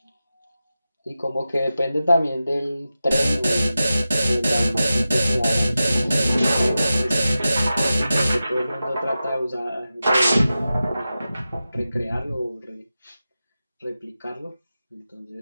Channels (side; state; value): both; inverted; correlation -0.93